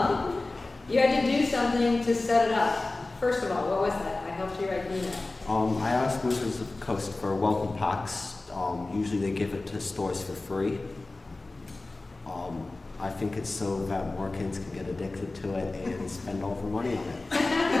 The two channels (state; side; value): quieter; right; 3.2 dB